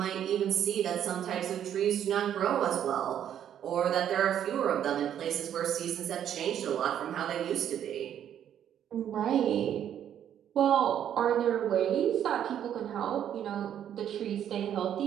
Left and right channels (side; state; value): left; quieter; 9.9 dB